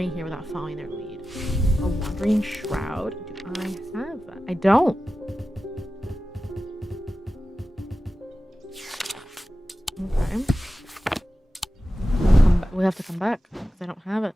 here without following their lead. A wandering shroud? Do I have that? I don't. Okay. We have to come back because I don't have it.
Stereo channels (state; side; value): normal; both; correlation 0.94